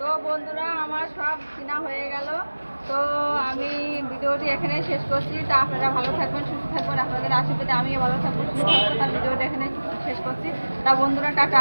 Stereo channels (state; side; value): inverted; both; correlation -1.00